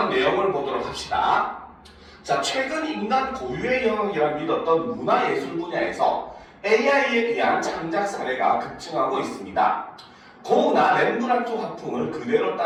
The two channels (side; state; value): both; identical; correlation 1.00